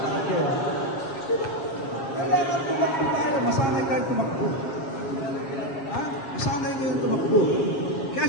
kayo. Kailangan tumakbo tayo. Masanay tayo tumakbo. Ha? Masanay kayo tumakbo. Kaya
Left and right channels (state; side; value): late; right; 7.3 ms